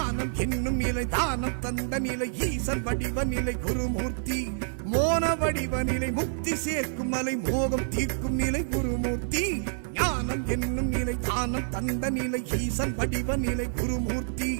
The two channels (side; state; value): left; silent; digital silence